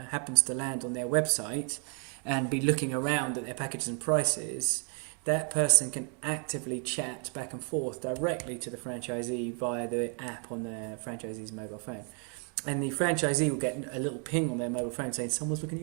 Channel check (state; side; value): quieter; left; 37.4 dB